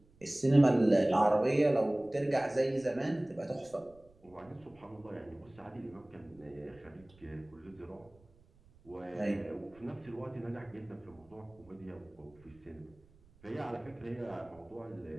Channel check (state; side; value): noise; right; rumble, 28 dB below the sound